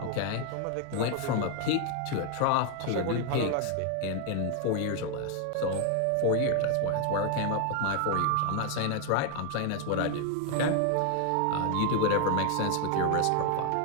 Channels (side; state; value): both; different; correlation 0.00